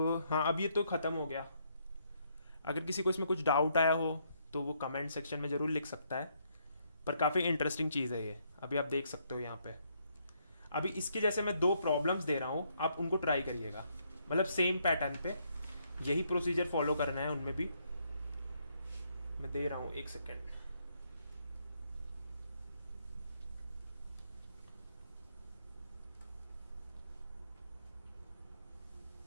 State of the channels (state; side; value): inverted; both; correlation -0.72